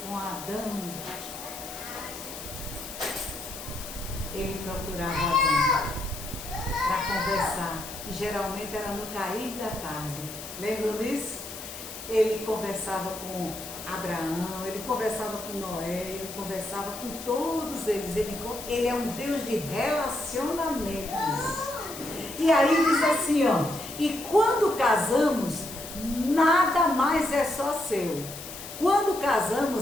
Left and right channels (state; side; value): noise; left; hiss, 11 dB below the sound